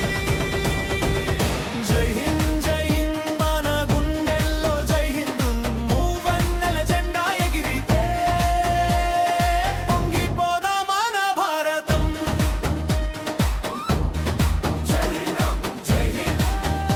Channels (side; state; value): both; identical; correlation 1.00